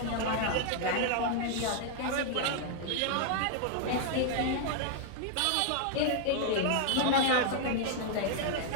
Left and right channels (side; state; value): both; different; correlation 0.00